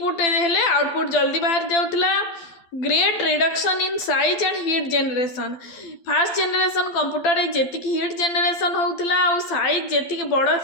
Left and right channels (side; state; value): right; late; 12 ms